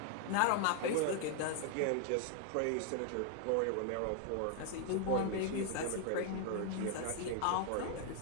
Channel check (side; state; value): both; different; correlation 0.00